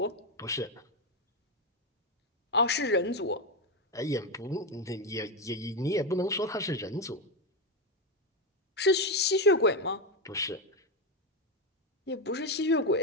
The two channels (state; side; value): normal; both; correlation 0.09